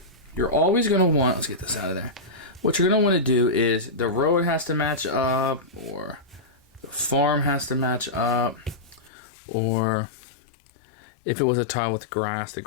you're always going to want, let's get this out of there. What you're going to want to do is the road has to match up, or the farm has to match up, or if it was a tile with grass, the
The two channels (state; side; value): drops out; right; at 9.1 s